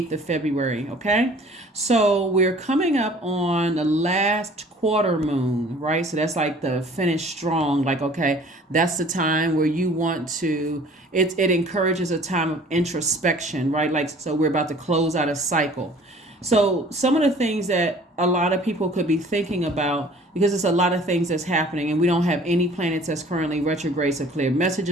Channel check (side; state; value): both; normal; correlation 0.51